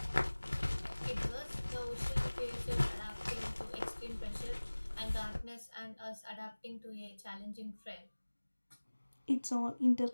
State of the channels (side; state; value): both; inverted; correlation -1.00